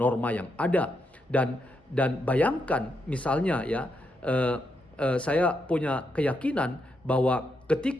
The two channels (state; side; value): normal; both; correlation 0.81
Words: yang ada. Dan bayangkan misalnya ya, saya punya keyakinan bahwa